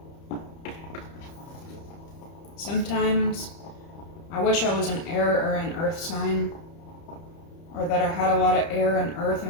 Sometimes I wish I was an air or an earth sign, or that I had a lot of air and earth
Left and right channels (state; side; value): late; right; 30 ms